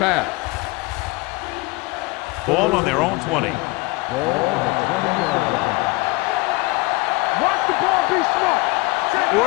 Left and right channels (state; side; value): quieter; right; 23.8 dB